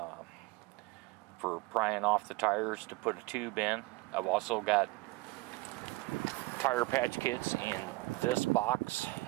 for prying off the tires to put a tube in. I've also got tire patch kits in this box.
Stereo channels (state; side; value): quieter; left; 22.0 dB